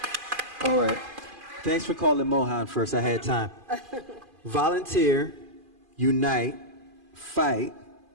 All right. Thanks for calling Mohan first. I had time. Volunteer, unite, fight,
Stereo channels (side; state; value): left; late; 2.5 ms